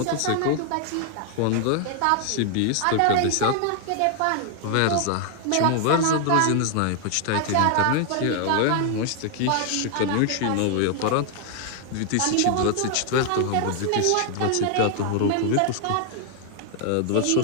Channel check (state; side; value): different; both; correlation 0.00